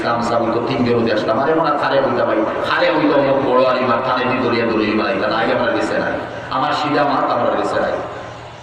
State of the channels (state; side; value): identical; both; correlation 1.00